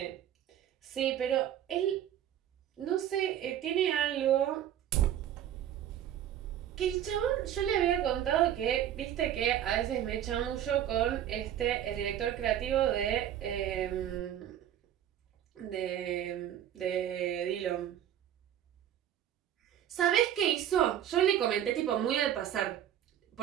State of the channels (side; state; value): left; quieter; 10.8 dB